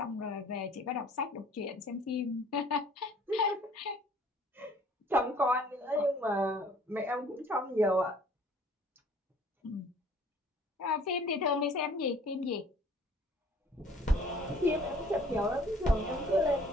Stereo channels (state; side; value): normal; both; correlation 0.54